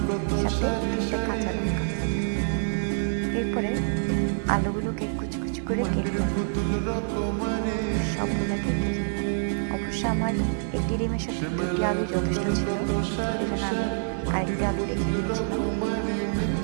সাথে 3টে কাঁচা লঙ্কা। এরপরে আলুগুলোকে কুচি কুচি করে কেটে সবগুলো কেটে অবশ্য আমার 1টি ডিমের সাথে 2টি আলু যথেষ্ট ছিল, এই জন্য আমি আরেকটি আলু রেখে দিয়েছিলাম।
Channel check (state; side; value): silent; left; digital silence